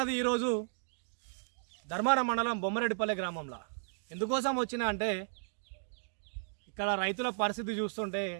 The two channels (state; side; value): silent; left; digital silence